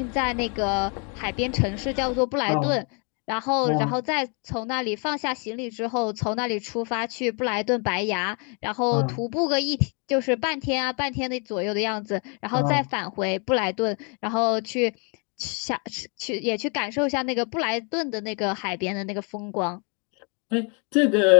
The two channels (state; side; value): quieter; right; 36.2 dB